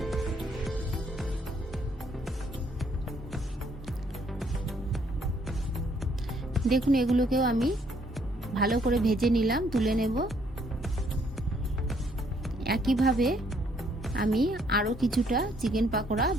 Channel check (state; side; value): normal; both; correlation 0.67